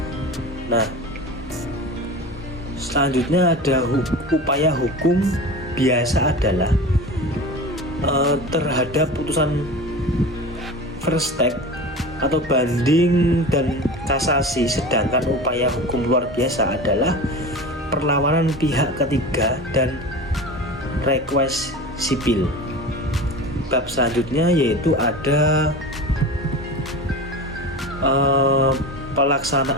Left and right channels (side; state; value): both; normal; correlation 0.32